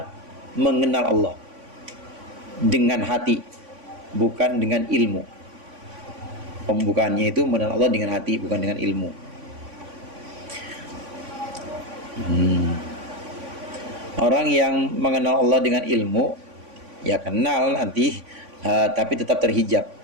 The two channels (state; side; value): late; left; 3.5 ms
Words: mengenal Allah dengan hati, bukan dengan ilmu. Pembukaannya itu mengenal Allah dengan hati, bukan dengan ilmu. Orang yang mengenal Allah dengan ilmu, ya kenal nanti, tapi tetap terhijab.